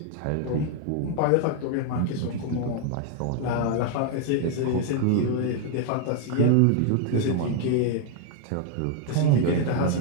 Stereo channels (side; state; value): both; different; correlation 0.00